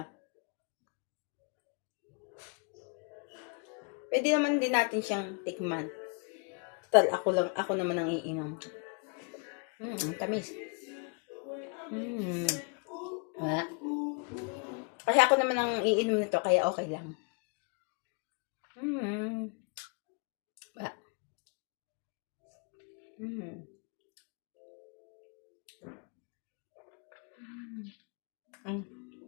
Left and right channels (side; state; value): right; quieter; 36.8 dB